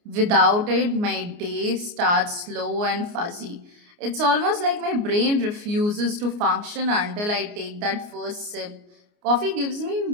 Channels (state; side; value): late; left; 29 ms